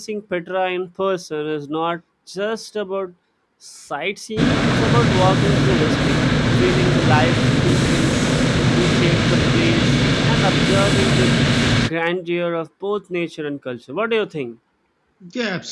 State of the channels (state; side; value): identical; both; correlation 1.00